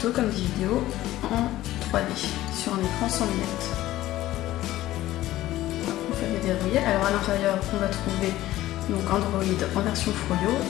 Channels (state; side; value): quieter; right; 15.3 dB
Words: comme des vidéos en 3D sur un écran sans lunettes. On peut les déverrouiller. Alors à l'intérieur on va trouver donc Android en version Froyo